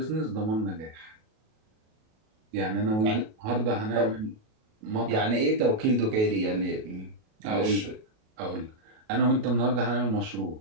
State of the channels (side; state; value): left; late; 37 ms